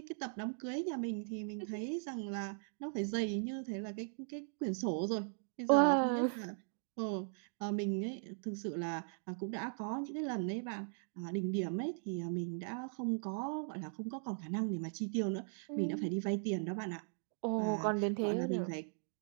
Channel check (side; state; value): left; silent; digital silence